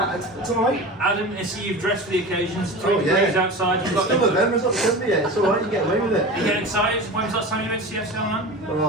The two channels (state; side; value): normal; both; correlation 0.31